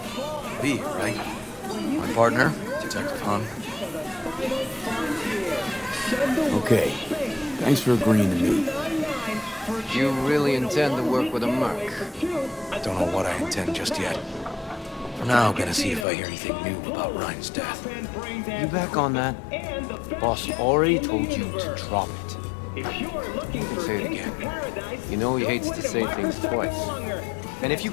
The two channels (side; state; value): right; drops out; at 16.1 s